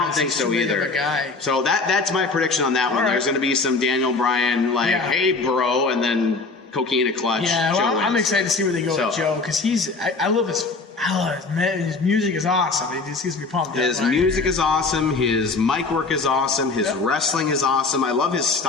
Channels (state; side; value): quieter; right; 3.9 dB